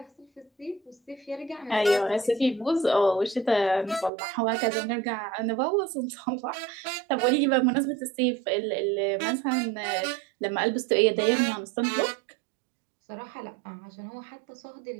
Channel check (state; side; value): drops out; left; at 4.1 s